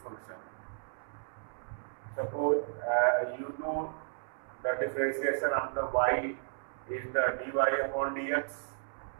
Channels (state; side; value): silent; left; 55 dB below the other